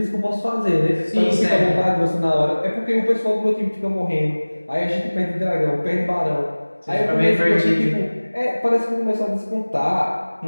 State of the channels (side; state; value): both; inverted; correlation -1.00